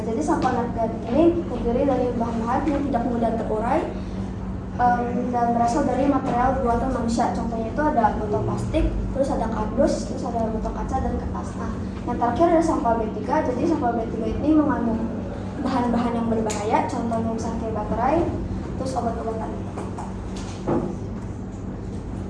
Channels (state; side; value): identical; both; correlation 1.00